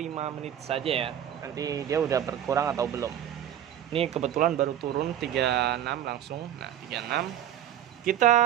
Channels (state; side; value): quieter; left; 10.8 dB